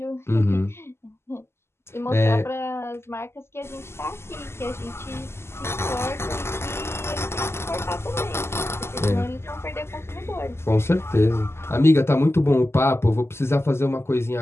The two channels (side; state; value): right; late; 0.12 ms